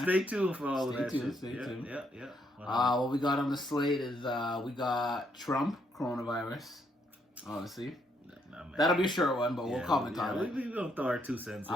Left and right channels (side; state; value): both; normal; correlation 0.73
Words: Stay tuned for all of that shit. Stay tuned. Yeah. What we got on the slate is we got Trump, coronavirus, obviously. That'll be a short one, but we'll comment on it. We're going to throw our 2 cents in.